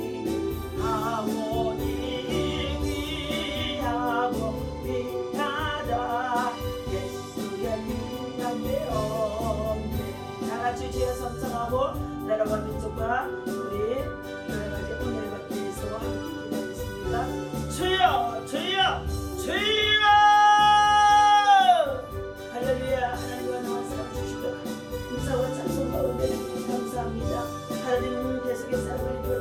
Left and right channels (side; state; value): both; identical; correlation 1.00